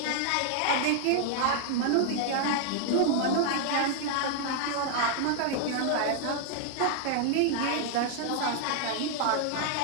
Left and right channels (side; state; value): both; different; correlation 0.00